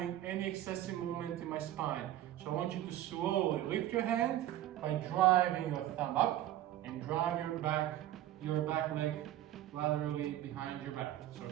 any excessive movement in my spine. So I want you to slowly lift your hand by driving your thumb up and drive your back leg laterally behind your back. So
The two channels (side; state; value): left; quieter; 13.3 dB